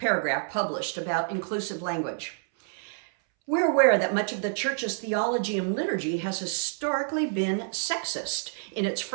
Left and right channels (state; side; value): silent; left; 59 dB below the other